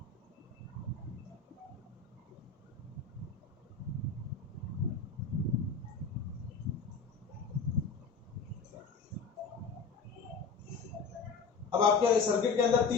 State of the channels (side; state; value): right; quieter; 5.1 dB